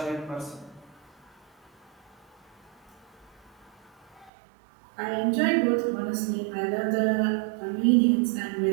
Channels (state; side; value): drops out; left; at 4.3 s